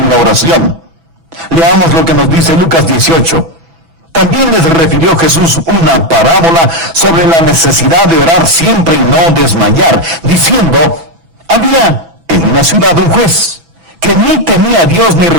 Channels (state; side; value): late; left; 6.0 ms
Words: la oración. Leamos lo que nos dice Lucas 18. También les refirió Jesús una parábola sobre la necesidad de orar siempre y no desmayar, diciendo, había en una ciudad un juez que ni temía a Dios ni